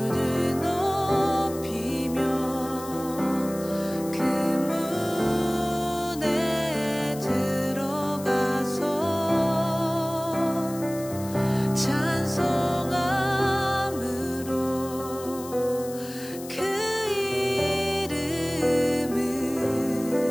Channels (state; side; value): noise; left; hiss, 15 dB below the sound